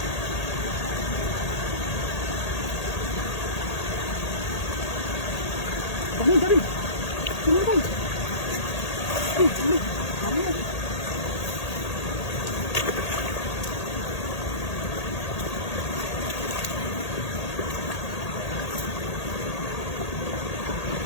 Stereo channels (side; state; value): right; late; 1.8 ms